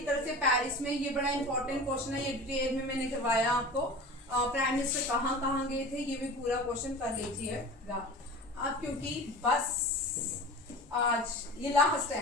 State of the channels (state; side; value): normal; both; correlation 0.36